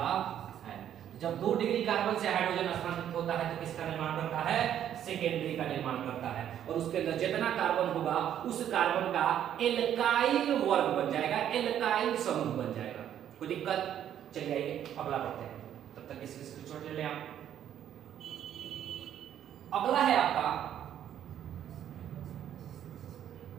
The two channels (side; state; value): left; quieter; 10.3 dB